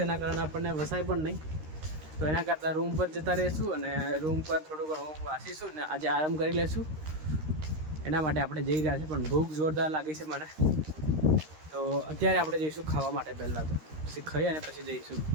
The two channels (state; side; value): late; left; 13 ms